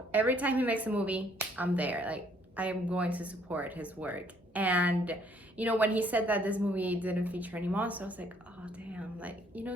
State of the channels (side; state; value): both; normal; correlation 0.64